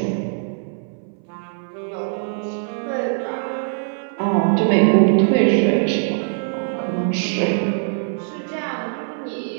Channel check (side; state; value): left; silent; 62 dB below the other